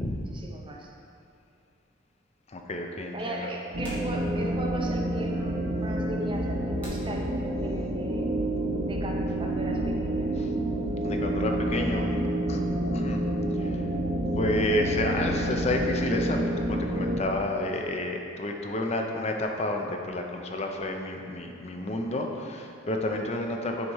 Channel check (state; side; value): normal; both; correlation 0.57